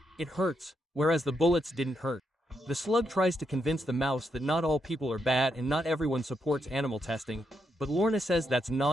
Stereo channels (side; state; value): both; normal; correlation 0.81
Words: it hurts, whereas the bullets didn't hurt. The slug tries to convince the mouse that not all people are bad and not everyone supports animal testing, but Lorna says that's